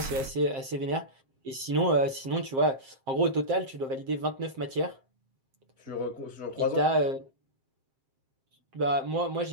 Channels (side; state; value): left; late; 7.6 ms